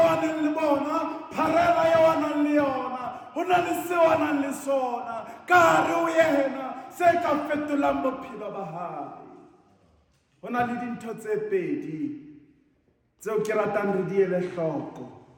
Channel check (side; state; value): both; identical; correlation 1.00